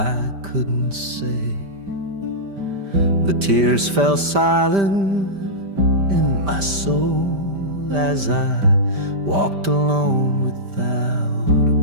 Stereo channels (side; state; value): left; late; 5.1 ms